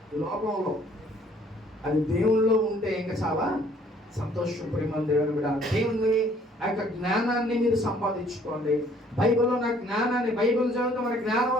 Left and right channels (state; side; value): normal; both; correlation 0.60